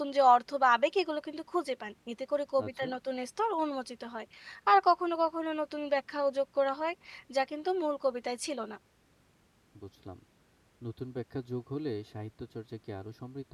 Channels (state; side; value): identical; both; correlation 1.00